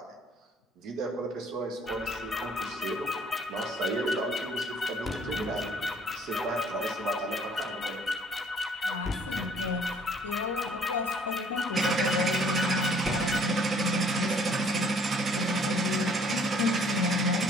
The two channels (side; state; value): both; normal; correlation 0.59